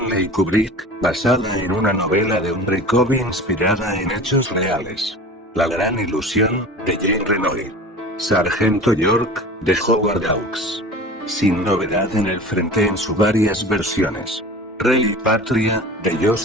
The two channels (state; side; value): normal; both; correlation 0.37